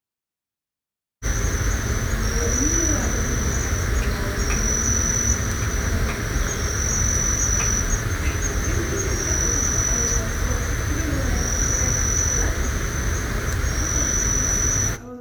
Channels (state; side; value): identical; both; correlation 1.00